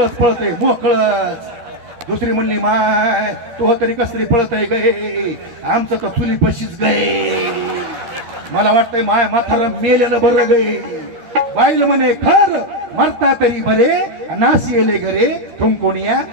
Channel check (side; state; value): left; late; 12 ms